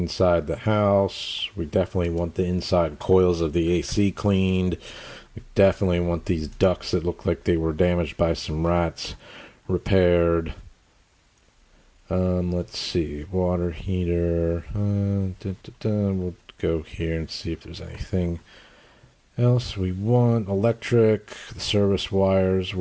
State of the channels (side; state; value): both; identical; correlation 1.00